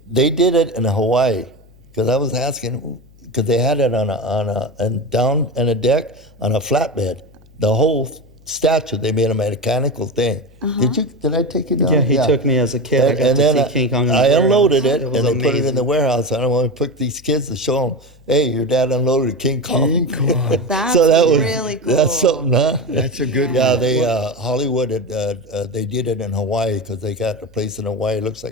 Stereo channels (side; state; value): left; noise; hum, 27 dB below the sound